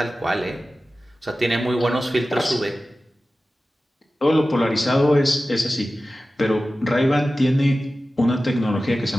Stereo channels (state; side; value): normal; both; correlation 0.95